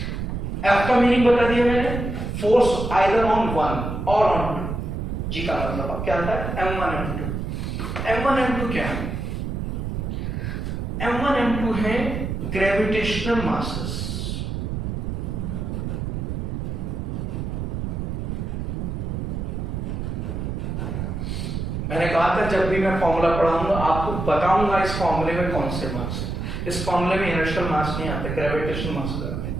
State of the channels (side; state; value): right; noise; rumble, 3 dB below the sound